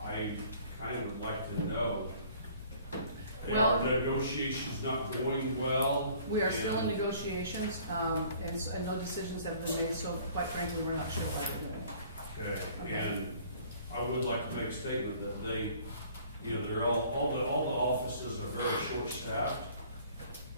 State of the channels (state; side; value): inverted; both; correlation -0.54